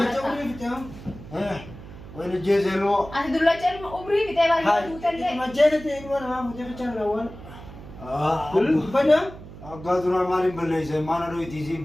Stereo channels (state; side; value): noise; right; hum, 15 dB below the sound